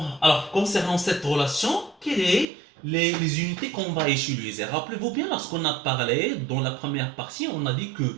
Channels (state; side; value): drops out; left; at 2.5 s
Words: alors concernant cette relation, quelles sont les unités qu'on va utiliser? Rappelez-vous bien, lorsqu'on a parlé dans la première partie, on a dit